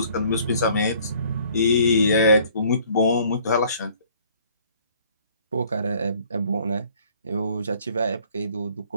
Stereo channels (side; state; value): both; inverted; correlation -0.58